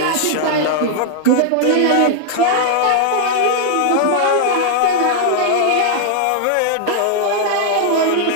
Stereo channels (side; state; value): both; different; correlation 0.00